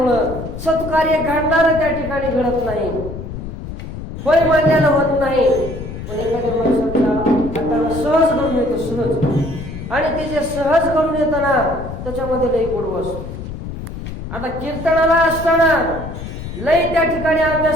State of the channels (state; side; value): noise; left; rumble, 9 dB below the sound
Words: सत्कार्य घडणार त्या ठिकाणी घडत नाही, होय म्हणल्यानं होत नाही. पण एखाद्या माणसाला आता सहज घडून येतं, सहज. आणि ते जे सहज घडून येतं ना त्याच्यामध्ये लई गोडवा असतो. आता कीर्तनाला असताना लई त्या ठिकाणी